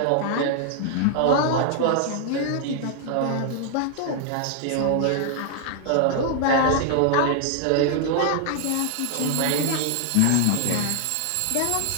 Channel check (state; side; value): different; both; correlation 0.00